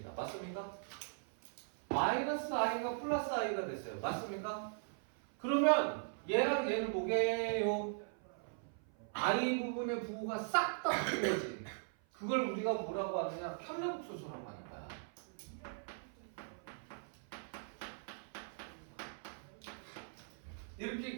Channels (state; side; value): silent; left; 51 dB below the other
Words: 맞습니까? 마이너스 i가 플러스 i가 됐어요. 맞습니까? 그러면 얘랑 얘는 뭐게요? i 부분의 부호가 싹 다 바뀐 거지. 그걸 우리가 뭐라고 하느냐? 켤레복소수라고 하는 거야. 이렇게